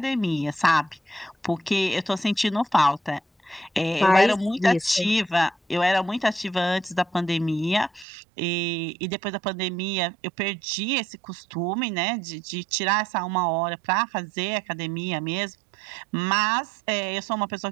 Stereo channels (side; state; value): left; drops out; at 8.1 s